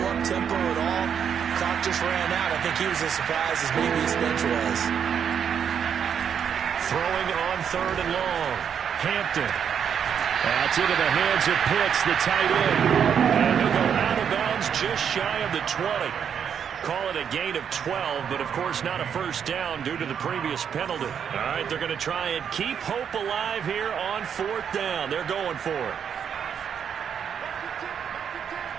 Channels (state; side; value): quieter; left; 7.8 dB